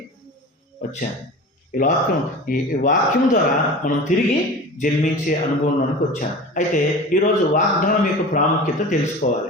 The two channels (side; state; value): both; normal; correlation 0.35